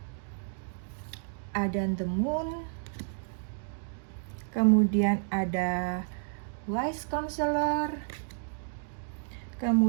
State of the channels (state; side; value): silent; left; digital silence